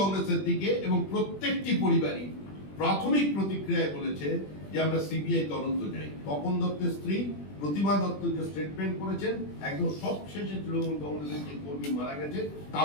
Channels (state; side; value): late; right; 20 ms